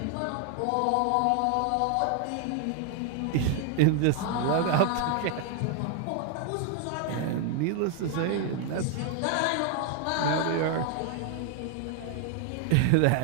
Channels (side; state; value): both; different; correlation 0.00